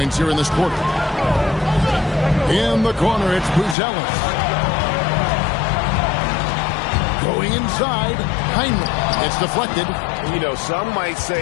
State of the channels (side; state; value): right; drops out; at 3.8 s